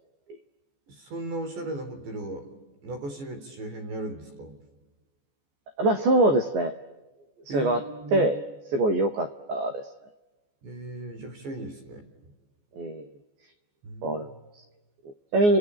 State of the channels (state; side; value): late; left; 14 ms